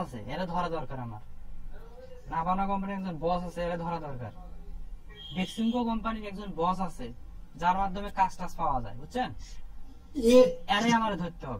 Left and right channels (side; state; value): both; identical; correlation 1.00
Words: আছে, এরা ধরা দরকার। আমার নাভানা কোম্পানির একজন বস আছে, এরা ধরা দরকার। ডেক্সিমকো কোম্পানির একজন বস আছে, যার মাধ্যমে কাজ টাজ পাওয়া যায়, বুঝছেন? জি। এরে আমার ধরতে